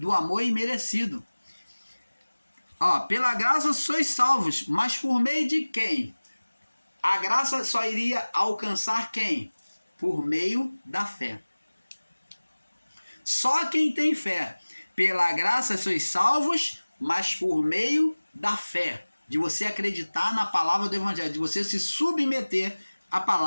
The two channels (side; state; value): both; inverted; correlation -1.00